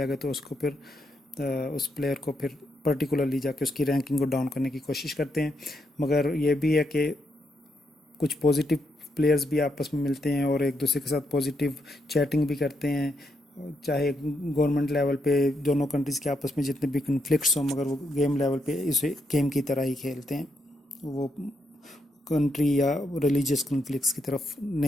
ہے تو اس کو پھر اس پلیئر کو پھر پرٹیکولرلی جا کے اس کی رینکنگ کو ڈاؤن کرنے کی کوشش کرتے ہیں۔ مگر یہ بھی ہے کہ کچھ پازیٹیو پلیئرز بھی آپس میں ملتے ہیں اور ایک دوسرے کے ساتھ پازیٹیو چیٹنگ بھی کرتے ہیں، چاہے گورنمنٹ لیول پہ دونوں کنٹریز کے آپس میں جتنے بھی کنفلکٹس ہوں، مگر وہ گیم لیول پہ اسے گیم کی طرح ہی کھیلتے ہیں، وہ کنٹری یا ریلیجیس کنفلکٹس کی طرف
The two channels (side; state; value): both; normal; correlation 0.79